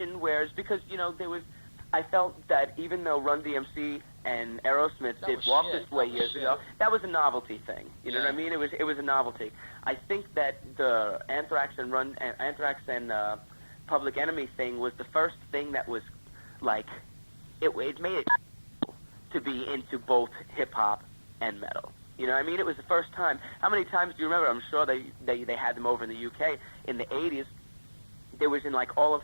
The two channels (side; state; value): both; inverted; correlation -1.00